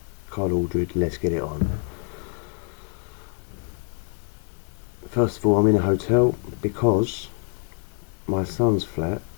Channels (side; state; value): right; quieter; 36.3 dB